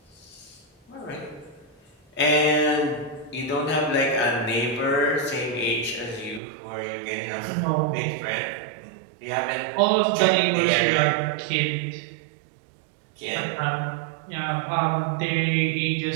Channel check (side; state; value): left; drops out; at 6.4 s